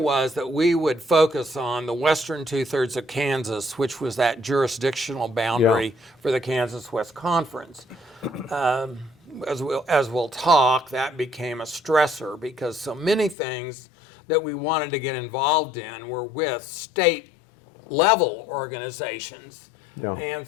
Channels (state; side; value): drops out; right; at 13.4 s